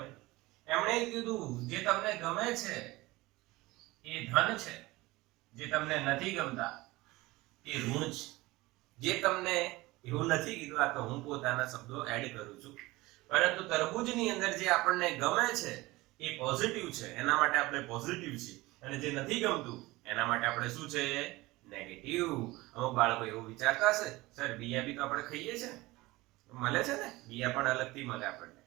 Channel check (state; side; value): quieter; left; 20.4 dB